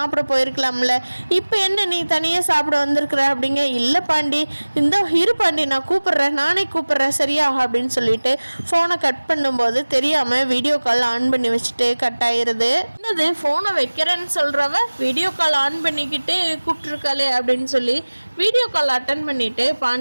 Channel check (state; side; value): inverted; both; correlation -1.00